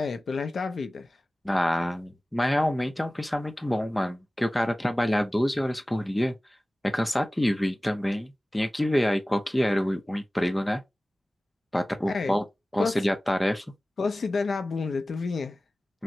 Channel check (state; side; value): normal; both; correlation 0.97